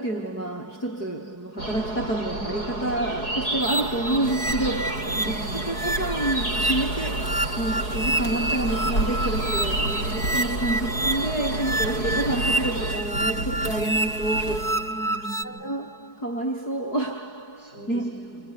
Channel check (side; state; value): right; late; 4.7 ms